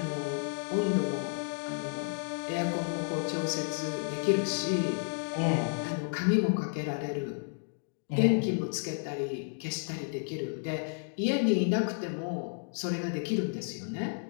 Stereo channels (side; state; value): right; silent; 57 dB below the other